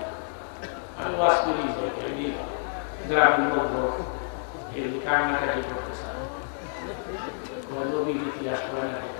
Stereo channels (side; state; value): right; silent; 59 dB below the other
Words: না, আমি ওয়াজ করি যাই। গ্রামের লোকজন এগুলি কান্নাকাটি করতে চান, নবীর ইতিহাস করে না,